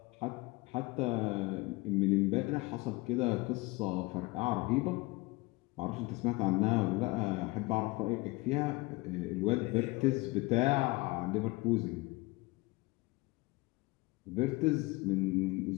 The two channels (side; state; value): right; quieter; 23.3 dB